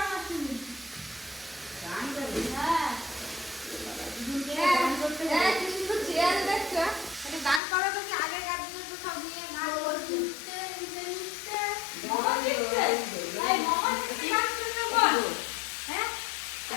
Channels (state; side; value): drops out; right; at 7.6 s